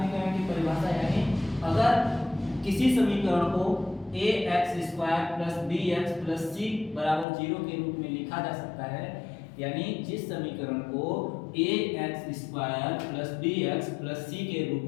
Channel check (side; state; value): right; drops out; at 7.2 s